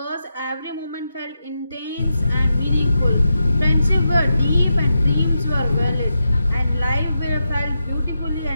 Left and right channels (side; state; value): both; inverted; correlation -0.87